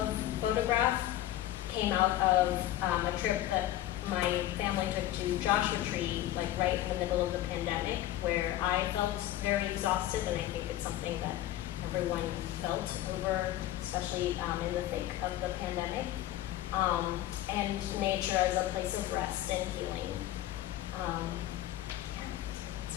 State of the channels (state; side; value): quieter; right; 13.9 dB